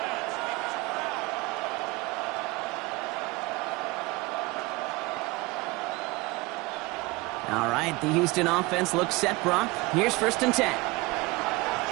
All right, the Houston offense looks set, Brock. Here's 1st and 10.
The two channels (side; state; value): left; quieter; 23.2 dB